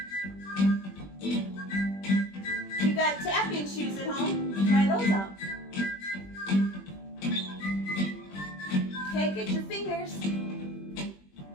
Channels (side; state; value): right; late; 21 ms